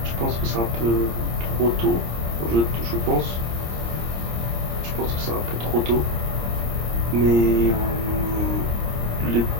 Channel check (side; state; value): left; late; 26 ms